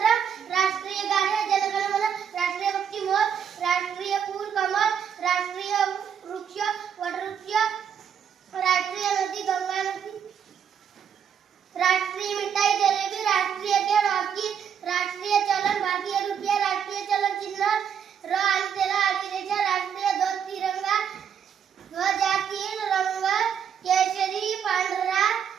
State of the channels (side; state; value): left; quieter; 8.0 dB